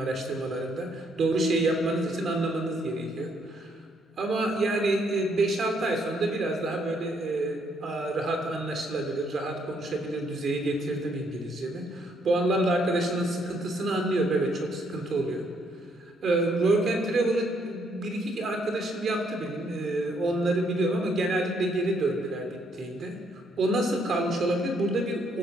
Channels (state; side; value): normal; both; correlation 0.71